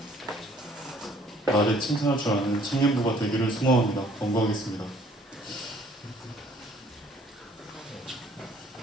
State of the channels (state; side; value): normal; both; correlation 0.59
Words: 말에 칭찬할 줄 아는 청년부가 되기를 소망합니다. 권고하겠습니다.